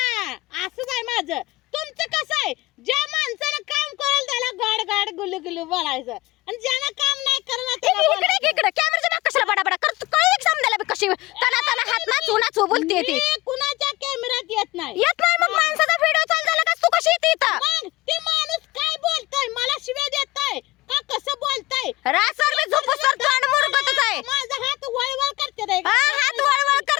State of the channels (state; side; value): quieter; right; 20.1 dB